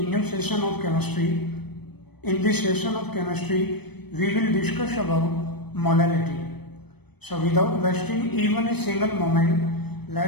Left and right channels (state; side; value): late; right; 0.98 ms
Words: new session of chemistry. In this session of chemistry, we will discuss about molality. So without wasting even a single moment,